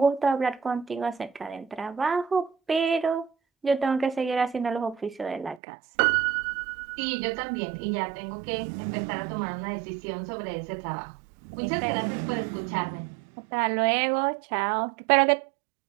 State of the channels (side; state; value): left; drops out; at 5.6 s